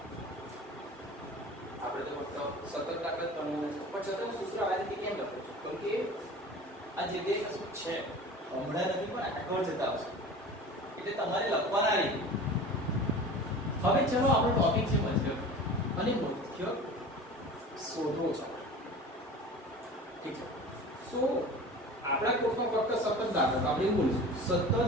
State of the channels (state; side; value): normal; both; correlation 0.38